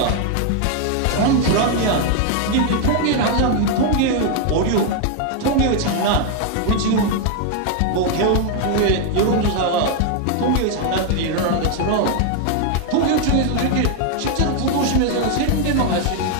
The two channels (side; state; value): both; different; correlation 0.00